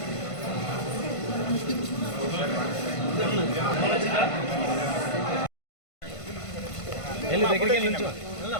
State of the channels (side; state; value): right; late; 1.5 ms